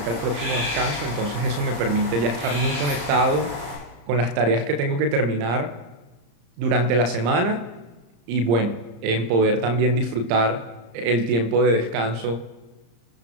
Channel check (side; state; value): left; late; 35 ms